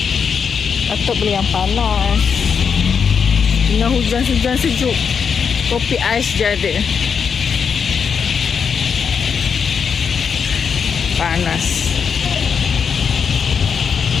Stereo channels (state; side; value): quieter; right; 6.5 dB